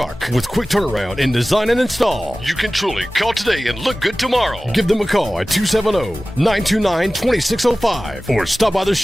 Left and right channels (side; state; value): both; normal; correlation 0.97